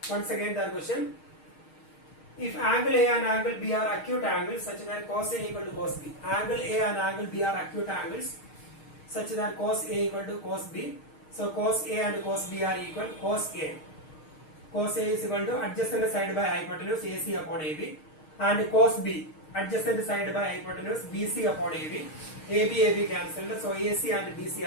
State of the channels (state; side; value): late; right; 6.5 ms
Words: once again the question. If angle A and angle B are acute angles such that cos A equal to cos B. Angle A and angle B are acute angles such that cos A equal to cos B. So cos A and cos B are equal. Cos A is equal to adjacent side by hypotenuse AC upon AB, and cos B adjacent side by hypotenuse BC upon AB. AB cancelled. So AC and